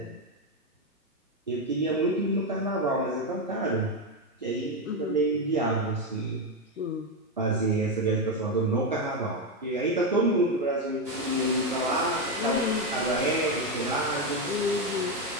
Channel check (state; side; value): normal; both; correlation 0.08